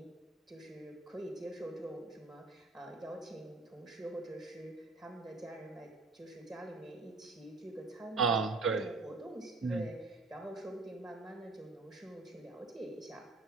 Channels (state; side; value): quieter; left; 3.5 dB